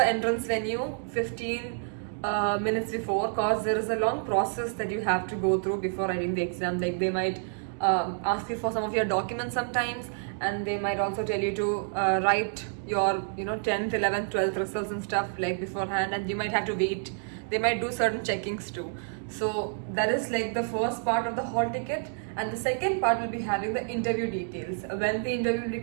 entrance venue 15 minutes before, cause there is a long process that you have to go through before writing the exam. Like they might ask you for some of your documents sometimes, and they might also tell you to write your 10th, 11th, 12th results and stuff like beforehand, and you might have to wait. They might do certain checkings too. So that is like the first part of the hall ticket, and the second part will be having the interview details, when the interview will be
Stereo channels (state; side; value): silent; left; digital silence